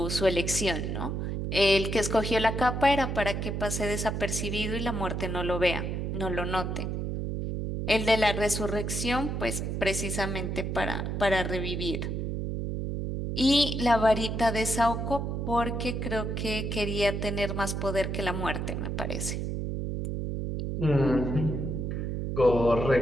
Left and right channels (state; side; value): noise; right; hum, 2 dB below the sound